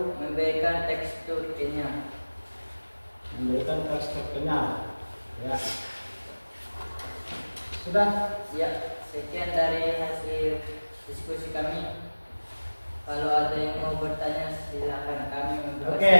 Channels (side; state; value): both; inverted; correlation -1.00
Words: memberikan tekstur kenyal. Memberikan tekstur kenyal. Ya. Sudah? Ya, sekian dari hasil diskusi kami. Kalau ada yang mau bertanya silakan, kami memberikan. Oke,